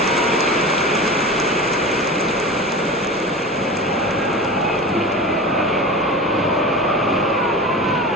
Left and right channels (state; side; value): normal; both; correlation 0.31